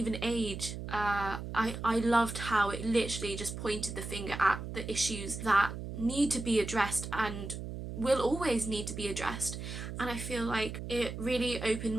age. I loved how it literally just pointed the finger at the issues that need to be addressed and will always need to be addressed. And I feel like it really opened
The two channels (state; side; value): noise; right; hum, 7 dB below the sound